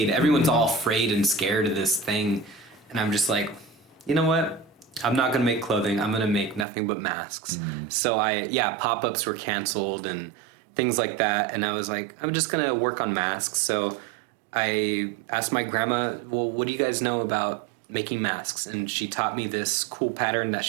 Everyone's all afraid and scared of this thing. And I'm just like, you know what? I'm not going to make clothing. I'm going to make nothing but masks. So pop-ups were canceled and things like that. And I was like, I'm just going to work on masks. So I asked my grandma, well, what do you guys know about making masks? And she taught me this cool pattern that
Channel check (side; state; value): left; drops out; at 6.7 s